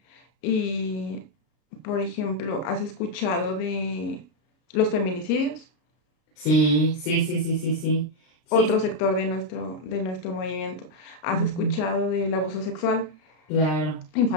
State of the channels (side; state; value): right; late; 33 ms